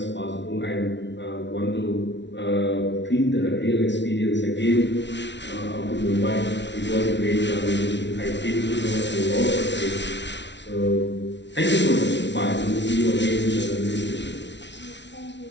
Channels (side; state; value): right; late; 0.51 ms